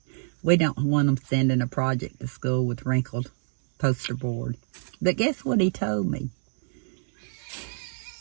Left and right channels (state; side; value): silent; left; digital silence